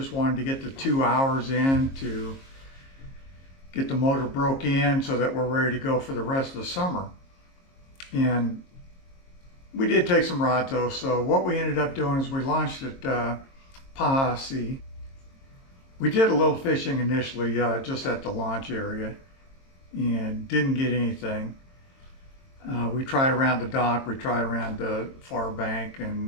wanted to get the 2 hours in to get the motor broke in so that we're ready to go for the rest of the summer. And we did take some rods though. So what we ended up doing is we launched at Posse. We did a little fishing initially just at the launch area and didn't get anything. We tried around the dock, we tried around the far bank,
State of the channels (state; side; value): late; right; 22 ms